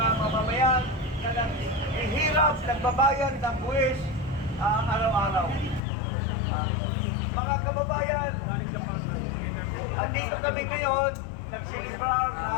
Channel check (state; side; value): drops out; right; at 5.8 s